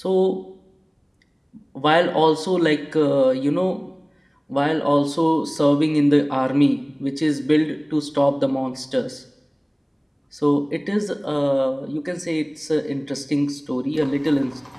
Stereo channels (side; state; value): both; identical; correlation 1.00